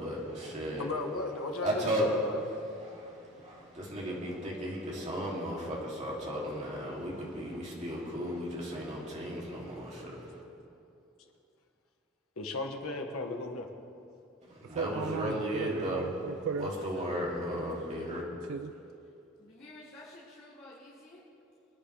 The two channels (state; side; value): normal; both; correlation 0.36